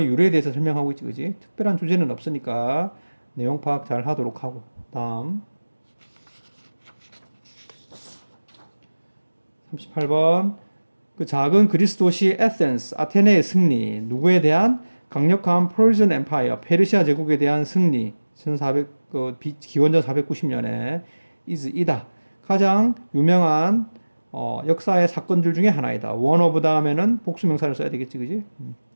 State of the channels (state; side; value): inverted; both; correlation -1.00